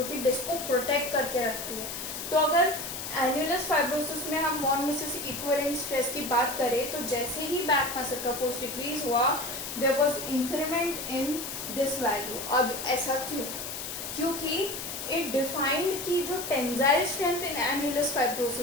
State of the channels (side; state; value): left; noise; hiss, 6 dB below the sound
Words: कि डिस्क को प्रोटेक्ट करके रखती है। तो अगर एन्युलस फाइब्रोसिस में हम वॉन मिसेस इक्विवेलेंट स्ट्रेस की बात करें तो जैसे ही बैक मसल का फोर्स डिक्रीज हुआ there was increment in this value. अब ऐसा क्यों? क्योंकि इट डिफाइंड कि जो tensile strength in annulus